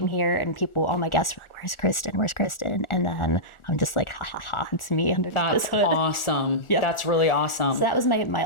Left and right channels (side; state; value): right; late; 1.4 ms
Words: here and people, all my guests were like, "Where's Kristen? Where's Kristen?" And then I'm just like, ha ha ha, it's me under That's this hood. awesome. Yep. That's really awesome. So that was my